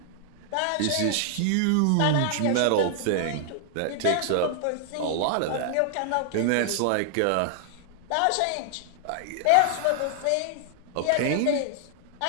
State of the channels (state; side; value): different; both; correlation 0.00